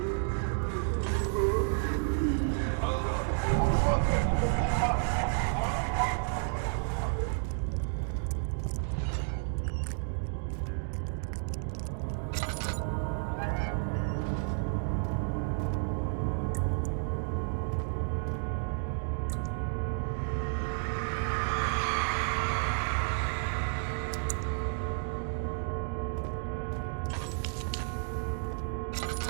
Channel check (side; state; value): left; silent; 57 dB below the other